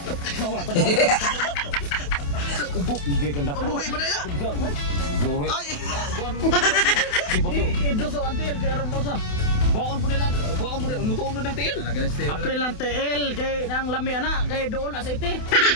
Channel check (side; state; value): right; late; 28 ms